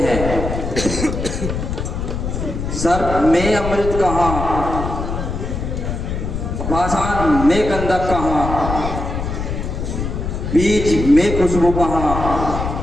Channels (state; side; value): noise; left; rumble, 4 dB below the sound